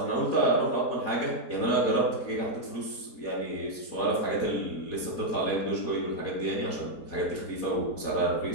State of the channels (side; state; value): right; late; 4.2 ms